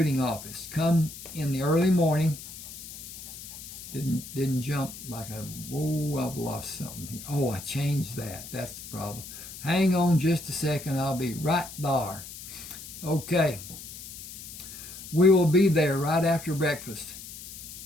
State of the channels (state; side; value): noise; left; hiss, 13 dB below the sound